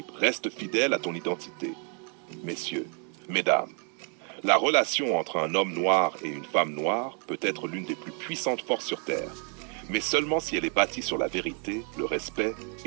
reste fidèle à ton identité. Messieurs, mesdames, la relation entre un homme noir et une femme noire peut être l'une des plus puissantes forces sur Terre, mais seulement si elle est bâtie sur la vérité, le respect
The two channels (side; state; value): left; quieter; 39.7 dB